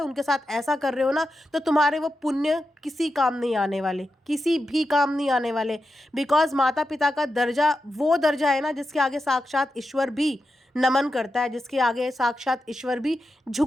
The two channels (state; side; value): normal; both; correlation 0.89